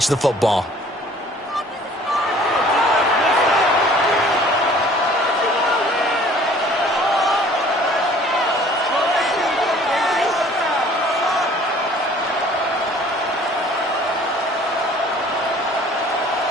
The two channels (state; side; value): normal; both; correlation 0.52